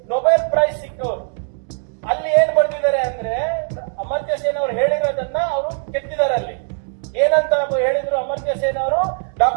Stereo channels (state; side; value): silent; left; 64 dB below the other